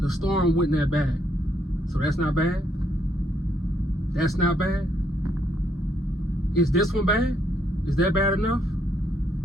The storm wasn't that bad. So that's not bad? That's not bad? Is this one bad? Is that bad enough?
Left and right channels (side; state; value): both; normal; correlation 0.73